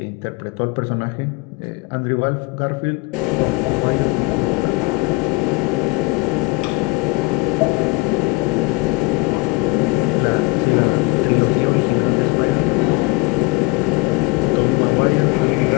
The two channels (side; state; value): right; quieter; 24.7 dB